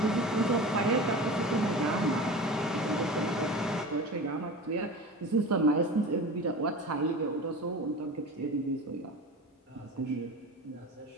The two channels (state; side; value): normal; both; correlation 0.32